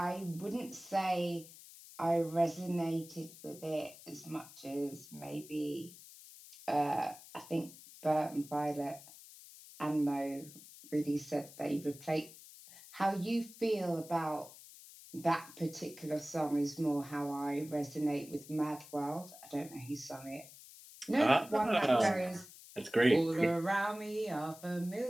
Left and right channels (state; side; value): noise; left; hiss, 18 dB below the sound